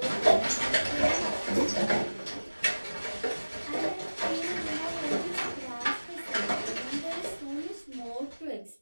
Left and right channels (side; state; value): both; inverted; correlation -1.00